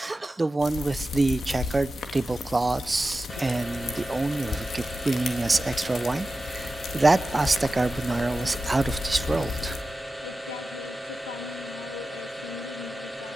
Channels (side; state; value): both; normal; correlation 0.94